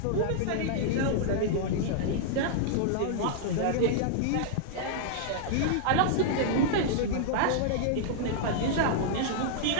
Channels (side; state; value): both; different; correlation -0.01